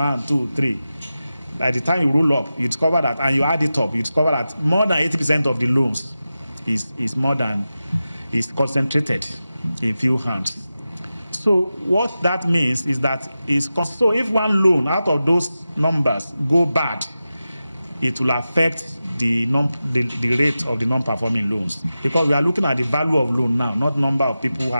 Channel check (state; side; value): inverted; both; correlation -0.93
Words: 2, 3, by the time you roll up, you discover that, and you add it up, you discover that more than 80% of the loans is concentrated in few hands. So what that means is that so if one loan out of those numbers go bad, it will affect the rate of the non-performing loans, because we are looking at the value of loan now, not number of people who